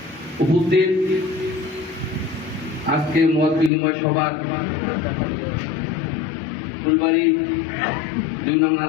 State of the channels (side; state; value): right; drops out; at 3.7 s